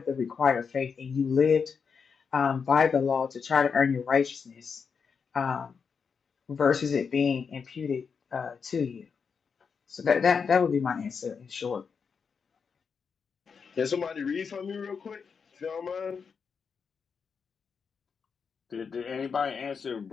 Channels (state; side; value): quieter; right; 5.9 dB